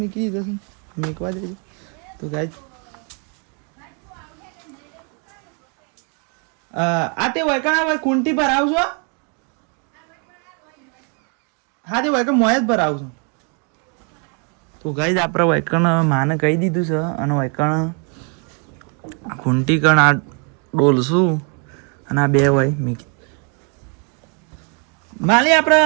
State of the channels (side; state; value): left; quieter; 37.6 dB